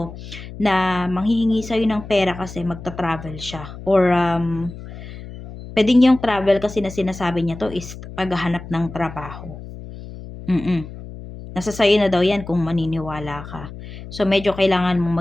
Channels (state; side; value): noise; left; hum, 13 dB below the sound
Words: na manghihingi sa'yo ng pera kasi magta-travel siya. Or, pwedeng yung travel kasi na sinasabi niya to is paghahanap ng trabaho. Nasa sa'yo na daw yan kung maniniwala ka. So, medyo kailangan